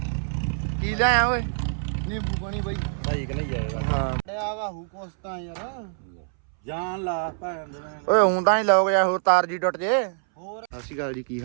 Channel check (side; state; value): left; silent; 61 dB below the other